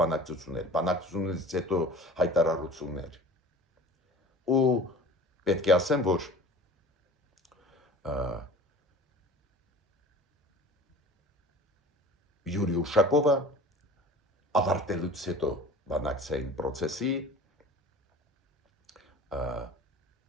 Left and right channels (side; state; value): both; normal; correlation 0.41